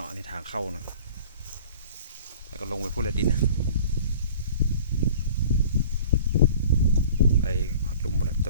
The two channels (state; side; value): inverted; both; correlation -0.45